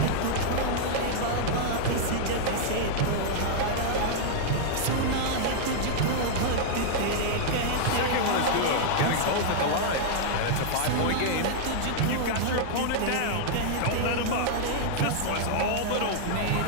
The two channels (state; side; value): different; both; correlation -0.01